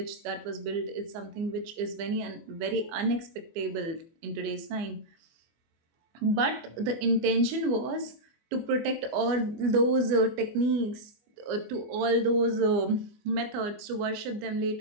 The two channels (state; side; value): late; left; 24 ms